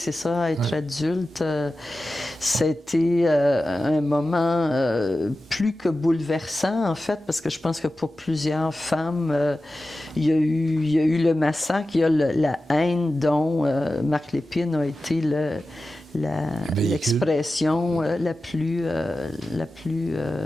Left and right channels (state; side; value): normal; both; correlation 0.94